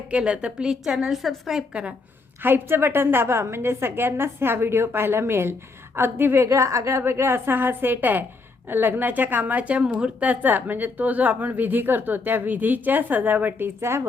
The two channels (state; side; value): quieter; right; 3.9 dB